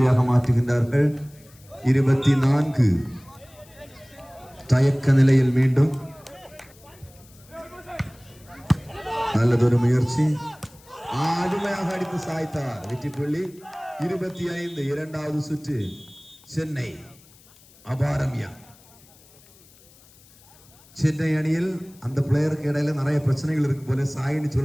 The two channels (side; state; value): left; noise; hiss, 26 dB below the sound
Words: மாற்றுகின்றார்கள். 24. தயக்க நிலையில் மீண்டும் நல்லதொரு முயற்சி. அருமையாக அடித்து சாய்த்தார். வெற்றி புள்ளி 25. இரண்டாவது சுற்று சென்னை அபாரமியா. சென்னை அணியில் அந்த பிளேயருக்கு இடையில நிறைய பிரச்சனைகள் இருக்கு போல. சாயின்னு